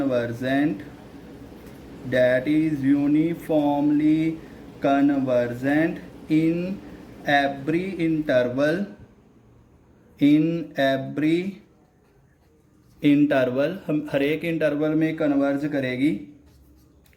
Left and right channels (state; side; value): identical; both; correlation 1.00